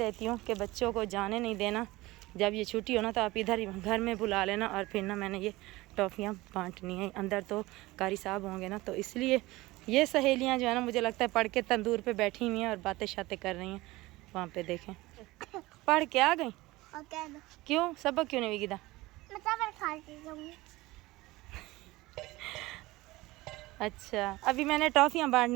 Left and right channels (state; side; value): quieter; left; 19.8 dB